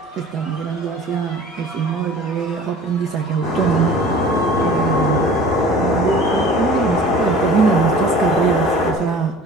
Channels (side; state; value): both; normal; correlation 0.44